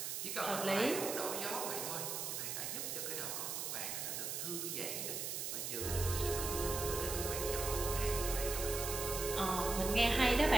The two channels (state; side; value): noise; right; hiss, 3 dB below the sound